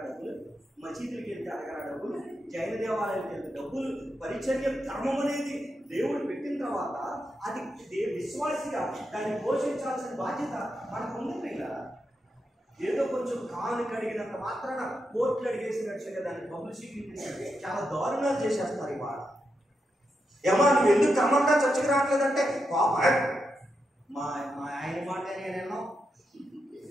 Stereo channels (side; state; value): both; normal; correlation 0.85